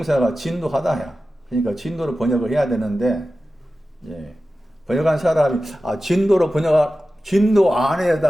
진노하다야. 그러니까 진노로 번역을 해야 되는데 예. 번역한 사람이 진노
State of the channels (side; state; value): both; normal; correlation 0.94